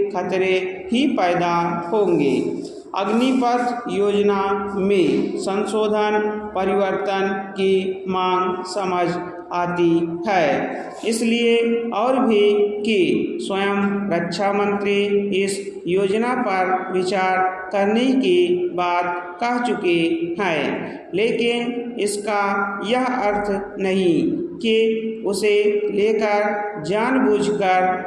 खतरे ही पैदा होंगे। अग्निपथ योजना में संशोधन परिवर्तन की मांग समझ आती है, इसलिए और भी कि स्वयं रक्षा मंत्री इस योजना पर विचार करने की बात कह चुके हैं, लेकिन इसका यह अर्थ नहीं कि उसे लेकर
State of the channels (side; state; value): both; identical; correlation 1.00